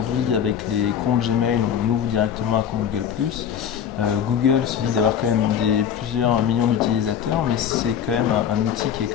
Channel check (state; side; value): quieter; right; 8.6 dB